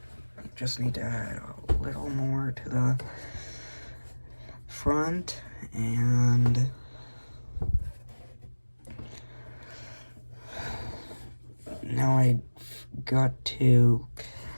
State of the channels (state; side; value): inverted; both; correlation -1.00